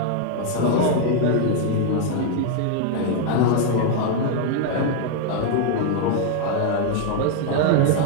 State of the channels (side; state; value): both; different; correlation 0.00